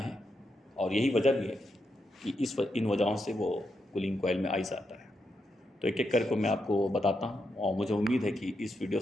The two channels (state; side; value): normal; both; correlation 0.83